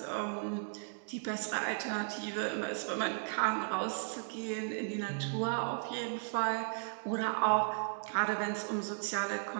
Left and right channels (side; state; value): left; silent; digital silence